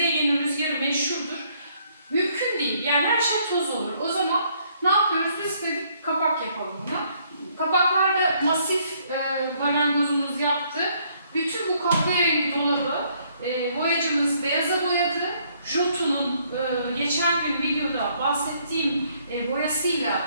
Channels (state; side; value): inverted; both; correlation -0.67